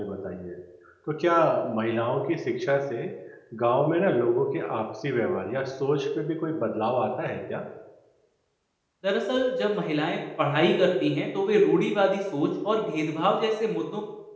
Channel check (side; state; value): both; identical; correlation 1.00